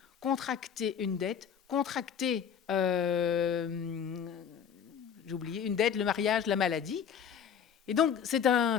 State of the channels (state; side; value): quieter; right; 7.9 dB